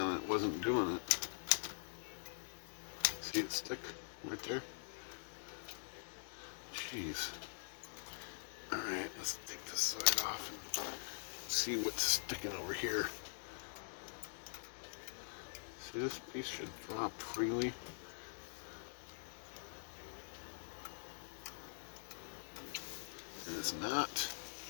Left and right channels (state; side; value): silent; right; digital silence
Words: and it wasn't doing it. See it stick right there? Jeez. Alright, let's take this side off and see what's sticking over here. See, this piece should drop freely. And it's not